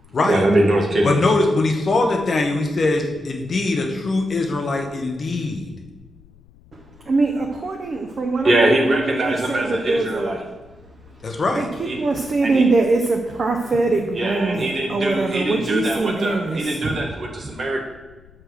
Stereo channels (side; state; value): left; noise; rumble, 26 dB below the sound